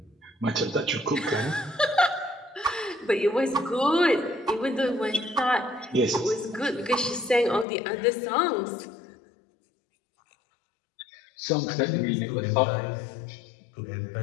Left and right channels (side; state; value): right; drops out; at 7.7 s